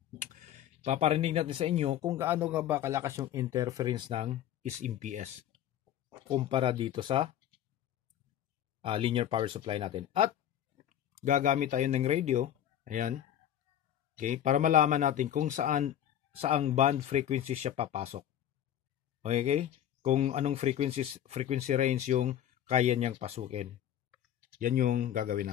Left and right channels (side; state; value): right; quieter; 10.8 dB